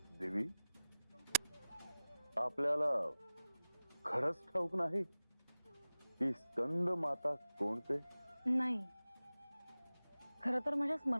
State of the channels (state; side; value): inverted; both; correlation -0.94